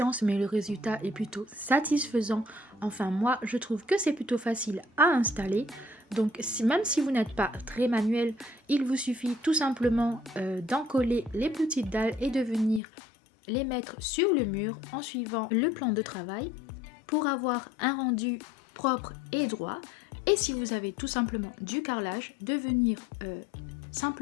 mais le résultat est plutôt satisfaisant. Enfin, moi, je trouve que c'est plutôt facile à installer. Donc, même si vous n'êtes pas très manuel, il vous suffit tout simplement d'en coller les petites dalles et de venir les mettre sur le mur en suivant le plan de travail pour avoir un rendu propre et droit. Et si vous avez tout simplement du carrelage, de venir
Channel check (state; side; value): drops out; right; at 12.8 s